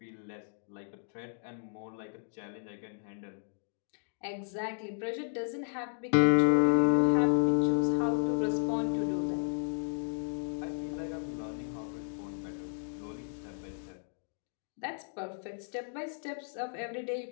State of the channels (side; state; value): right; silent; digital silence